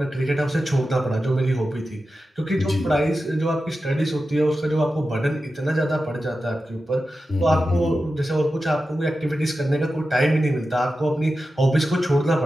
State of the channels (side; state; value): both; normal; correlation 0.92